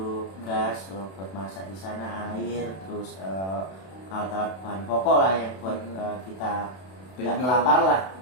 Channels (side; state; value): right; late; 32 ms